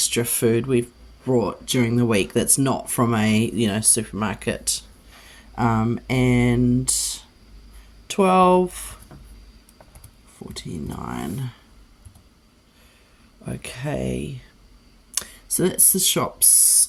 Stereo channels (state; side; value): identical; both; correlation 1.00